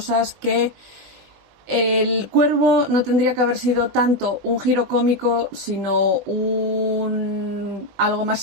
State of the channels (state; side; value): late; left; 20 ms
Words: que el cuervo no tendría que haber sido tanto un giro cómico, sino algo más